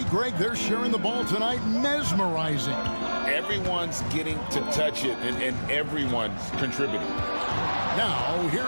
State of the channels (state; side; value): inverted; both; correlation -1.00